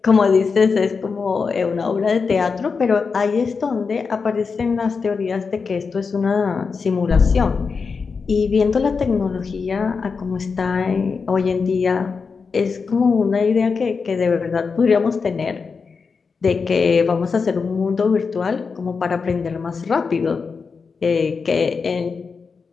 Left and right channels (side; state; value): right; quieter; 5.1 dB